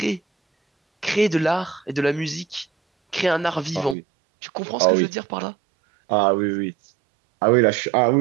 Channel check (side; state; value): left; drops out; at 4.0 s